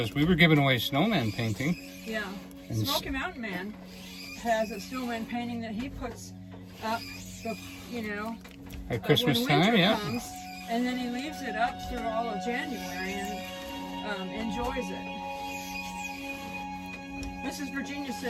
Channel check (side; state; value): both; identical; correlation 1.00